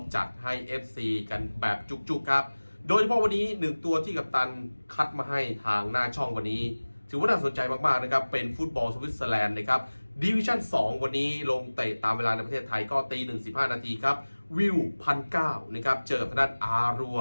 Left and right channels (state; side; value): inverted; both; correlation -1.00